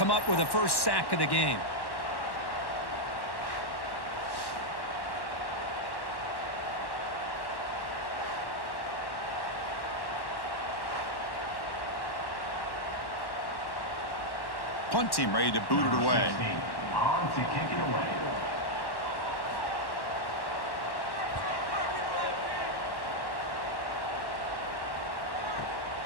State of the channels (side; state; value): right; late; 1.1 ms